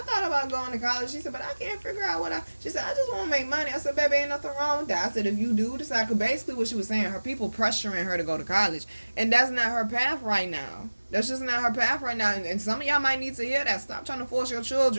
about going to college. She said, but I can't figure out she said, I just want to make money. I said, baby, ain't nothing wrong with that. I said, if you do decide, because basically what she was saying, her people pressuring her to go to college, and that's not her path right now. That's just not her path right now, and some of y'all might need to hear that. Stop trying to force your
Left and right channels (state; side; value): inverted; both; correlation -1.00